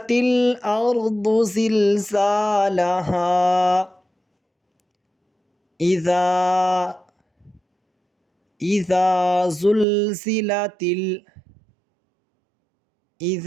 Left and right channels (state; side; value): drops out; left; at 9.9 s